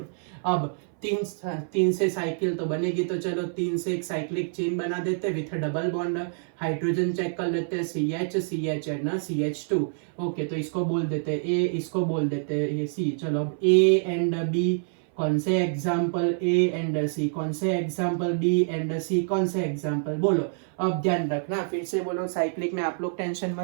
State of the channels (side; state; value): left; silent; 58 dB below the other